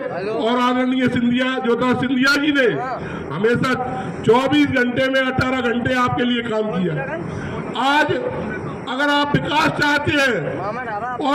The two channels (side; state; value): both; identical; correlation 1.00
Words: और आदरणीय सिंधिया, ज्योतिराज सिंधिया जी ने हमेशा 24 घंटे में 18 घंटे आपके लिए काम किया। आज अगर आप विकास चाहते हैं,